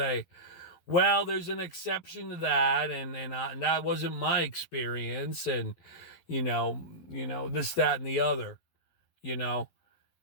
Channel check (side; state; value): right; late; 11 ms